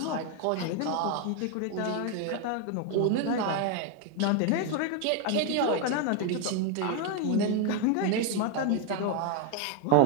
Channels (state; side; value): different; both; correlation 0.01